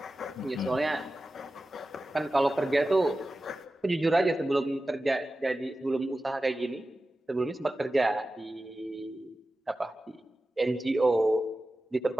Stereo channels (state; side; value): normal; both; correlation 0.94